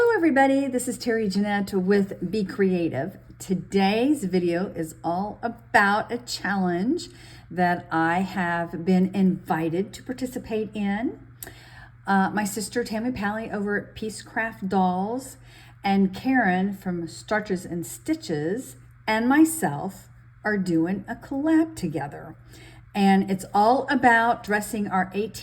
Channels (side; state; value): both; identical; correlation 1.00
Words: everybody, this is Terry Jeanette with Be Creative. Today's video is all about a challenge that I have been invited to participate in. My sister Tammy over at Peacecraft Dolls and Karyn from Starches and Stitches and myself are doing a collab together. And it's all about dressing our